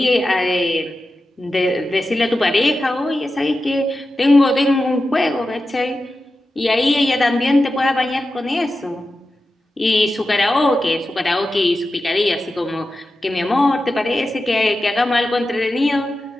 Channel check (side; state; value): both; normal; correlation 0.92